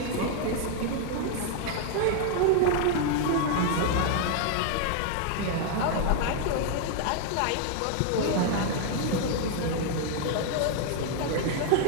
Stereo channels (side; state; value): both; different; correlation 0.00